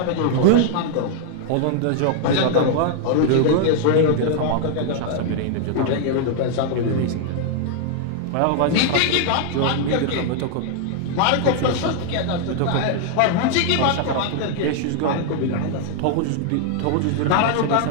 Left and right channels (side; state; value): both; different; correlation 0.00